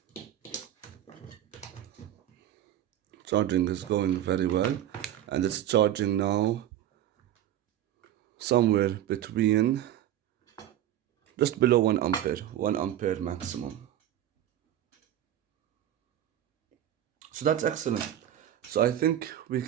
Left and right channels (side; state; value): left; quieter; 11.8 dB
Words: Charging is going very well, and it's charging now somewhere between just below 1 ampere, 1 ampere maximum. So that's excellent. So I think we